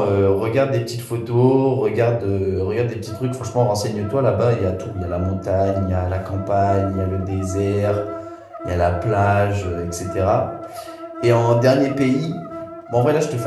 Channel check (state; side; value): identical; both; correlation 1.00